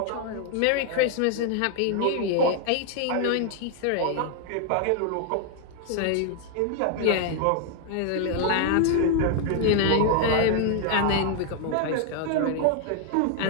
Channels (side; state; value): both; different; correlation 0.00